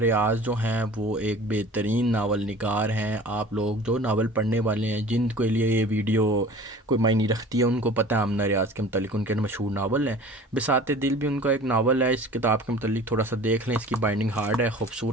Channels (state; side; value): normal; both; correlation 0.44